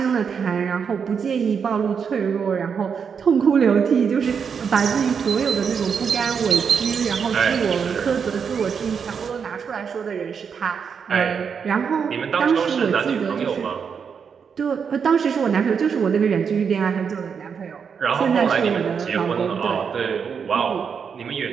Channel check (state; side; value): quieter; left; 6.5 dB